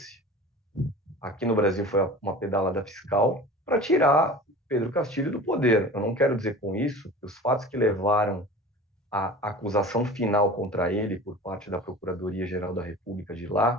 aqui no Brasil foi uma pedalada fiscal, para tirar Pedro Castilho do poder. Eu não quero dizer com isso que os fatos que levaram à acusação final contra ele por parte da Procuradoria-Geral da República de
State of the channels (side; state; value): both; normal; correlation 0.38